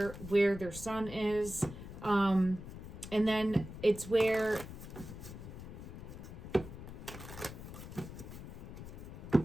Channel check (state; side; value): noise; left; rumble, 11 dB below the sound